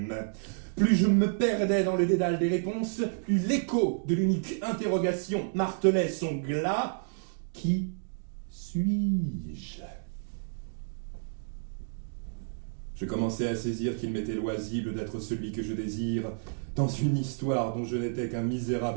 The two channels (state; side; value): silent; left; digital silence